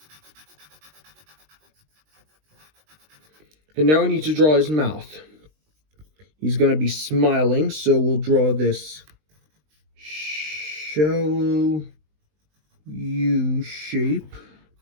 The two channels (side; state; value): left; late; 20 ms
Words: And now we need to draw his mouth. He's going to be smiling, so we'll draw this shallow U shape,